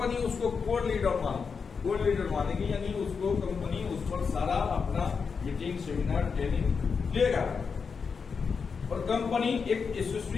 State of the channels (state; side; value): quieter; right; 5.6 dB